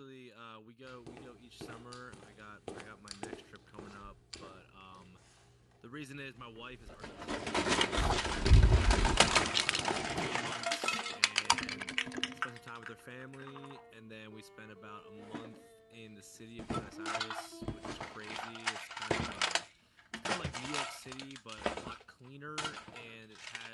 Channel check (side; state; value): both; identical; correlation 1.00